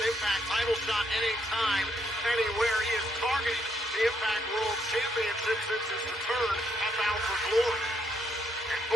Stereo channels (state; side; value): normal; both; correlation 0.75